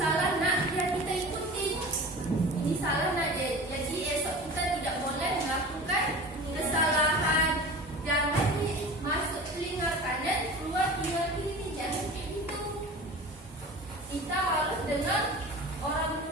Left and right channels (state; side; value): normal; both; correlation 0.36